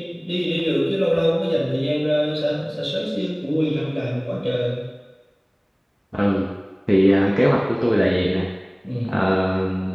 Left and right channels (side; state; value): both; identical; correlation 1.00